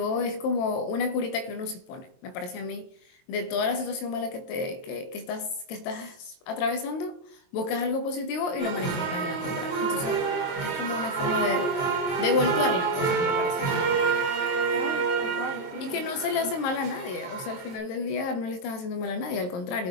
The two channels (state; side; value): late; right; 22 ms